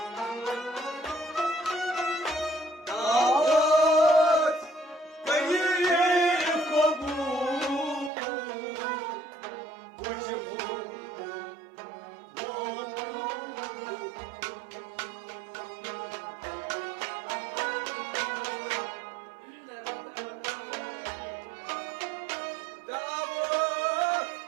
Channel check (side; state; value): left; drops out; at 8.1 s